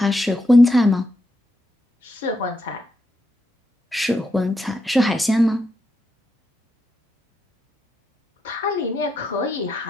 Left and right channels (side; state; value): both; normal; correlation 0.83